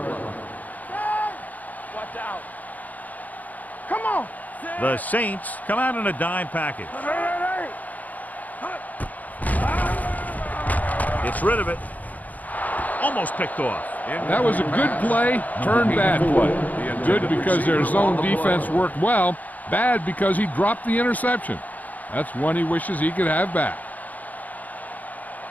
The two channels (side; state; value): right; late; 0.079 ms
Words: line. Watch out. Come on. The Saints come out in a dime package. Gets rid of it. Almost picked off. That was a good play, turned bad play. Good because their zone defense worked well, bad because he dropped the interception. That's one he wishes he could have back.